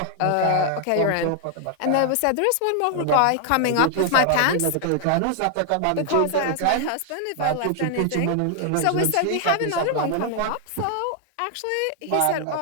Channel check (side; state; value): both; different; correlation 0.00